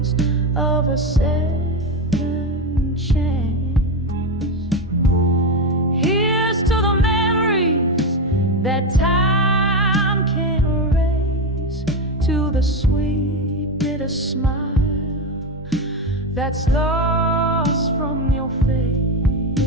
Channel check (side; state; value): both; normal; correlation 0.14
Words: of a second chance. Here's to the memories that time can't erase, to the sweet bitter smile that's lost from your